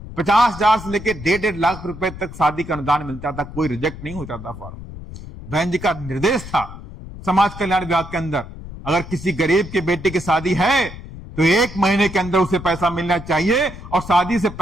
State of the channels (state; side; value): noise; left; rumble, 13 dB below the sound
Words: 50,000 से लेकर 1.5 लाख रुपए तक शादी का अनुदान मिलता था। कोई रिजेक्ट नहीं होता था फॉर्म। बहन जी का निर्देश था समाज कल्याण विभाग के अंदर, अगर किसी गरीब के बेटे की शादी है तो 1 महीने के अंदर उसे पैसा मिलना चाहिए और शादी से